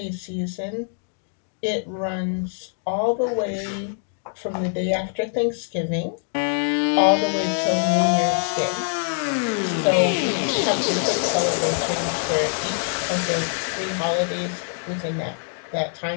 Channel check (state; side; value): silent; right; 63 dB below the other